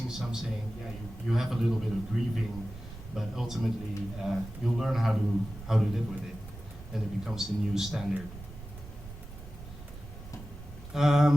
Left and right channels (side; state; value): right; noise; rumble, 14 dB below the sound